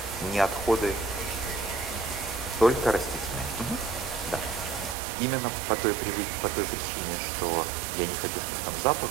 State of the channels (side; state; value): left; drops out; at 5.0 s